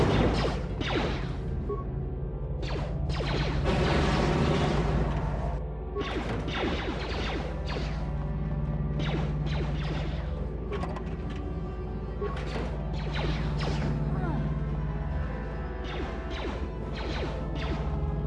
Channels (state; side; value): identical; both; correlation 1.00